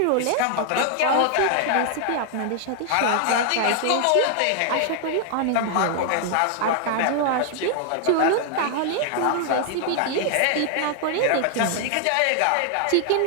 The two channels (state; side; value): different; both; correlation 0.00